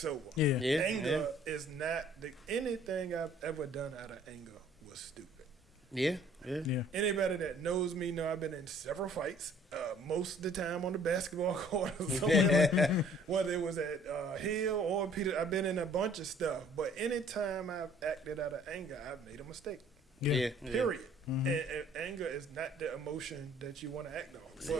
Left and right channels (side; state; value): both; normal; correlation 0.56